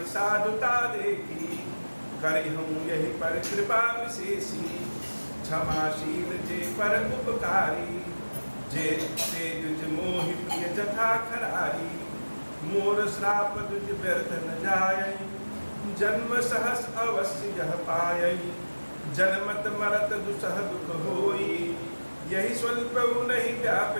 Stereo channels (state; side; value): inverted; both; correlation -1.00